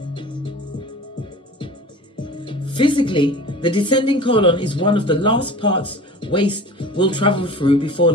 Physically, the descending colon is one of the last parts waste will travel through before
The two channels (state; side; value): normal; both; correlation 0.39